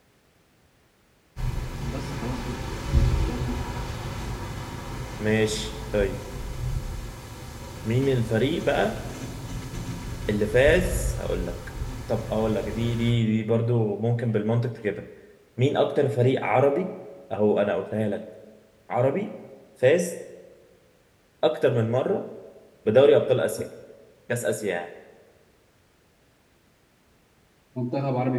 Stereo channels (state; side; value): identical; both; correlation 1.00